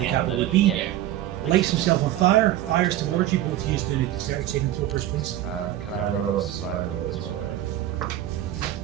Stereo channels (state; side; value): quieter; left; 13.2 dB